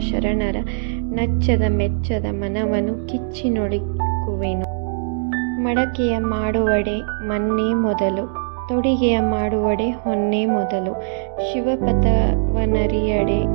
ಶರಣರ ನಚ್ಚದ ಮೆಚ್ಚದ ಮನವನು ಕಿಚ್ಚಿ ನುಡಿಕುವೆನು. ಮಡಕೆಯ ಮಾಡುವಡೆ ಮನ್ನೇ ಮೊದಲು, ತೊಡಿಗೆಯ ಮಾಡುವಡೆ ಹೊನ್ನೇ ಮೊದಲು, ಶಿವಪಥವನರಿಯಡೆ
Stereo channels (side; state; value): left; silent; 65 dB below the other